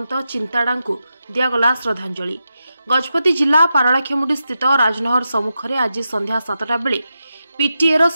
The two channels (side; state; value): both; inverted; correlation -0.89